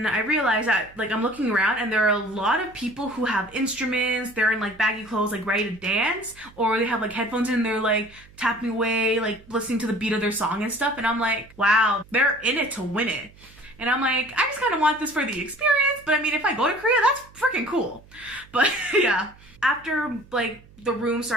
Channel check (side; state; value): right; noise; hum, 24 dB below the sound